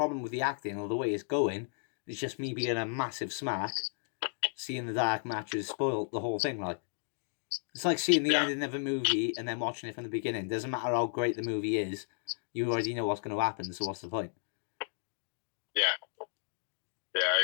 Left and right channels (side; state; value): right; silent; 55 dB below the other